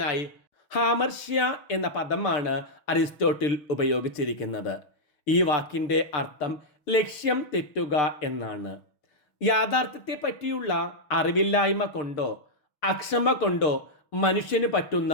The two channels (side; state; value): right; late; 6.7 ms